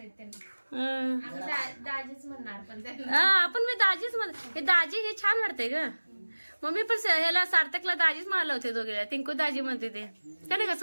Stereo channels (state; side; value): inverted; both; correlation -1.00